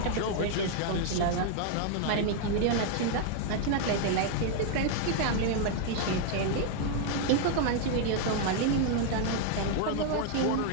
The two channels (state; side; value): different; both; correlation 0.00